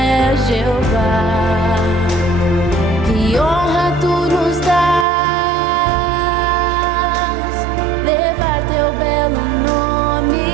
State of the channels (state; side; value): drops out; left; at 5.1 s